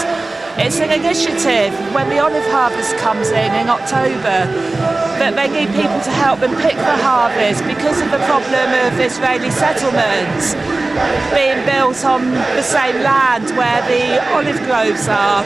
It's an initiative when the olive harvest comes in October, that they need people to help them pick the harvest because of the problem of Israeli settlements being built on the same land where the olive groves are.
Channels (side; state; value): left; quieter; 3.1 dB